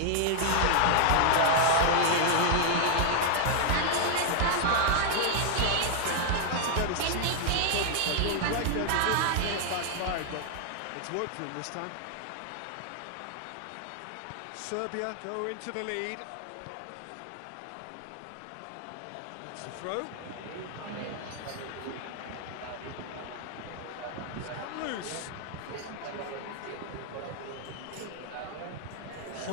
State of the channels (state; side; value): different; both; correlation 0.00